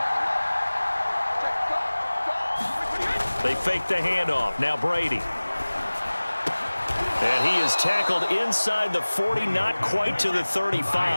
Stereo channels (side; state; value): both; inverted; correlation -1.00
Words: They fake the handoff. Now Brady. And he is tackled inside the 40, not quite to the